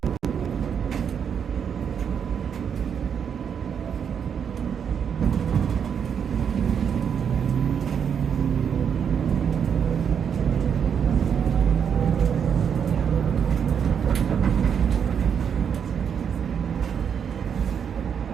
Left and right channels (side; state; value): left; quieter; 7.6 dB